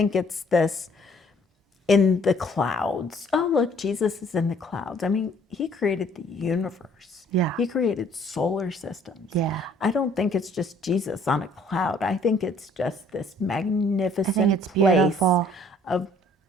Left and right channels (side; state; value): both; normal; correlation 0.59